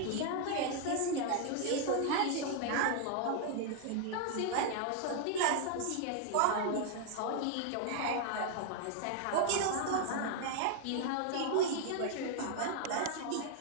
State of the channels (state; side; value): different; both; correlation 0.00